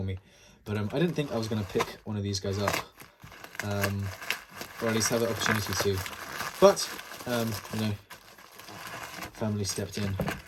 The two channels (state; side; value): identical; both; correlation 1.00